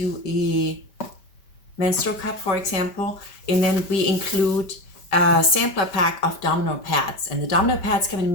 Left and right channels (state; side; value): late; right; 5.1 ms